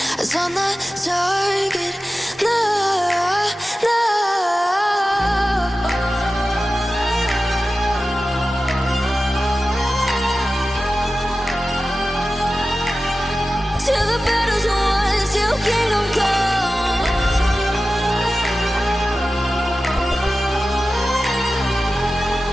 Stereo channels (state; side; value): normal; both; correlation 0.95